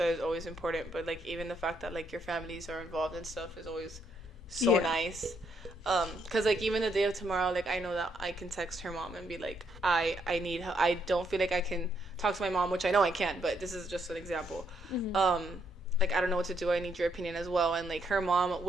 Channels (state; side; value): normal; both; correlation 0.75